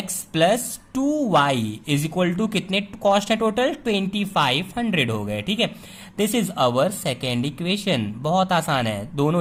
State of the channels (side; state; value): both; identical; correlation 1.00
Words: plus 2y is equal to कितने कॉस्ट है टोटल, 2500 हो गए। ठीक है, this is our second equation. बहुत आसान है,